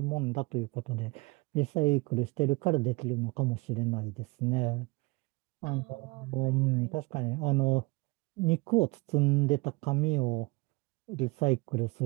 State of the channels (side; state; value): left; quieter; 25.4 dB